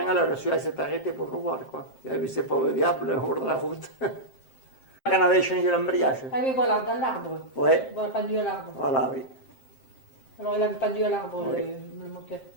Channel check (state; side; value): late; right; 7.6 ms